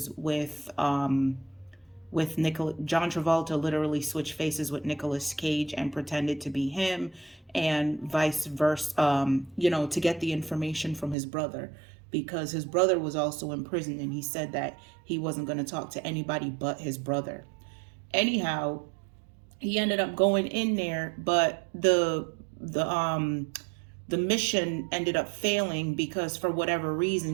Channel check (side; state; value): left; drops out; at 11.2 s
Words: with John Travolta literally switched faces with Nicolas Cage and pretended to be him, and vice versa. To get the information from his brother, because his brother was also in prison, and he said that he wasn't going to talk to anybody but his brother. Anyhow, he ended up going in there, but the mission ended up failing because for whatever